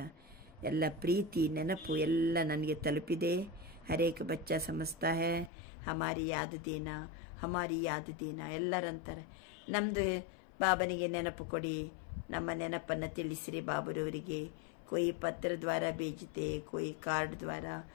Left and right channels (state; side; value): drops out; right; at 5.5 s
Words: ಎಲ್ಲ ಪ್ರೀತಿ ನೆನಪು ಎಲ್ಲ ನನಗೆ ತಲುಪಿದೆ. ಹರೇಕ ಬಚ್ಚ ಸಮಜ್ತಾ ಹೈ ಹಮಾರಿ ಯಾದ್ ದೇನಾ, ಹಮಾರಿ ಯಾದ್ ದೇನಾ. ಎಲ್ಲರಂತಾರೆ ನಮ್ಮದು ಬಾಬನಿಗೆ ನೆನಪು ಕೊಡಿ, ನಮ್ಮ ನೆನಪನ್ನು ತಿಳಿಸಿರಿ ಬಾಬರವರಿಗೆ. ಕೊಯ್ ಪತ್ರ ದ್ವಾರ ಬೇಜಿತೆ, ಕೊಯ್ ಕಾರ್ಡ್ ದ್ವಾರ,